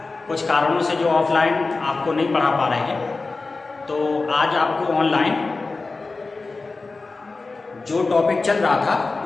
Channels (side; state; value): right; quieter; 3.7 dB